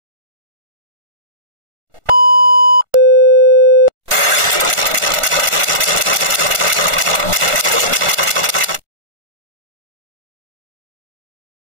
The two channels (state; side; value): late; left; 1.4 ms